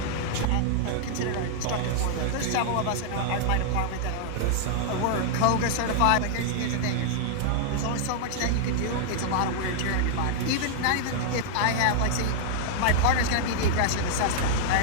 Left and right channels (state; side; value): different; both; correlation -0.01